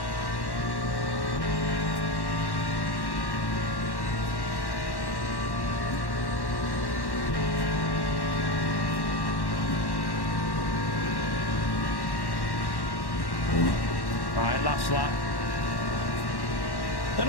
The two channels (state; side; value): late; right; 1.1 ms